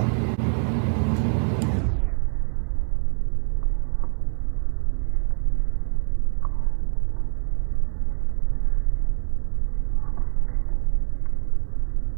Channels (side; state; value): left; silent; 63 dB below the other